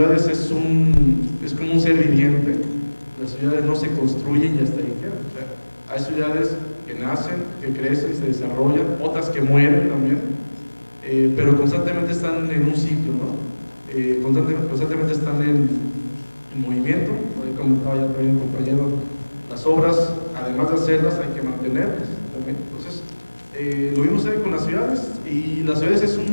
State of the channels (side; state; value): both; inverted; correlation -1.00